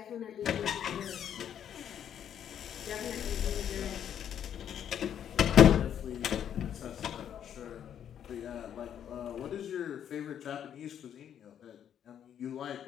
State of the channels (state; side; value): quieter; right; 9.4 dB